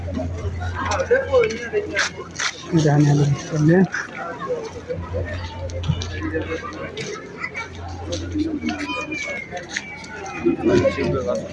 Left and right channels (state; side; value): identical; both; correlation 1.00